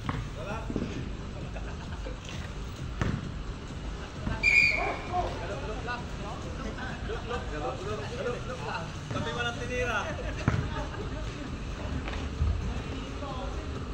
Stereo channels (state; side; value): identical; both; correlation 1.00